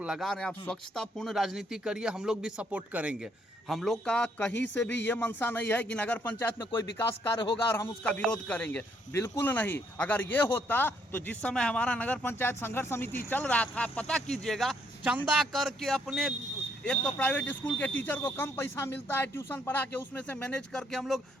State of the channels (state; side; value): normal; both; correlation 0.71